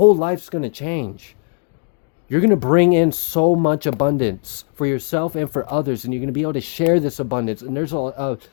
life's going to change. You're going to bring in so much abundance for yourself and for others. And you're going to be able to share this abundance. And there's a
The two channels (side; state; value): right; quieter; 39.4 dB